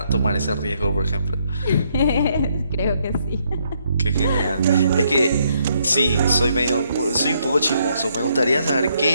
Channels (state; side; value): inverted; both; correlation -0.73